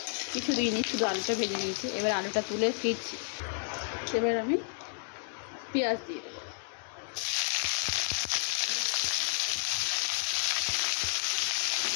কিছু দিইনি, শুধু আলুটা ভেজে নিয়েছি। এবার আলুটা তুলে ফিরছি। এবার আমি পেঁয়াজ দিয়ে দেবো।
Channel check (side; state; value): right; silent; 55 dB below the other